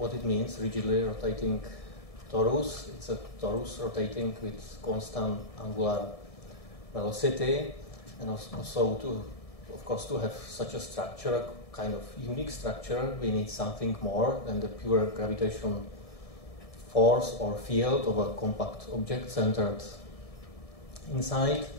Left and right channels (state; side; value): late; right; 1.7 ms